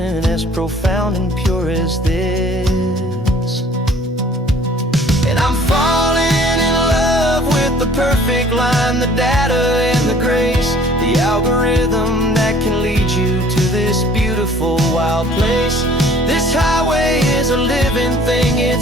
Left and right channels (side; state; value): both; normal; correlation 0.54